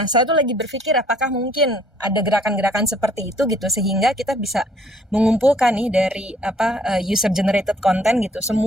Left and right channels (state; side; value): normal; both; correlation 0.61